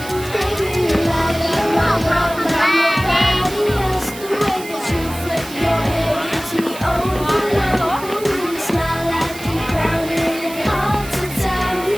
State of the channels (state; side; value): noise; right; hiss, 15 dB below the sound